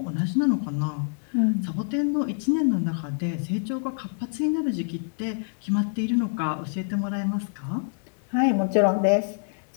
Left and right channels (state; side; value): silent; right; digital silence